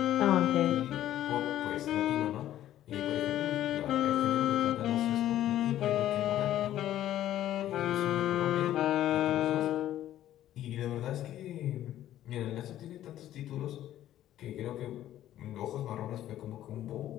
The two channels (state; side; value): quieter; right; 12.7 dB